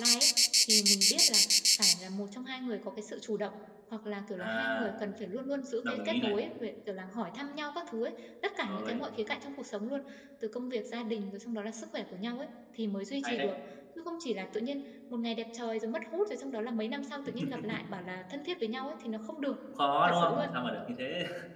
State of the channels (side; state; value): both; identical; correlation 1.00